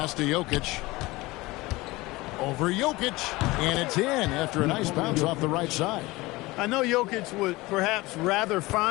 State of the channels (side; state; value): right; quieter; 21.0 dB